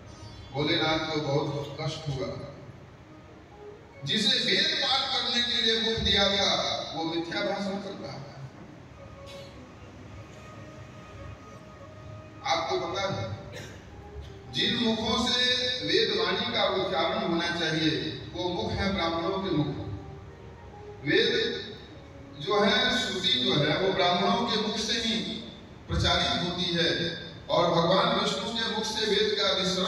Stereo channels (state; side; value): identical; both; correlation 1.00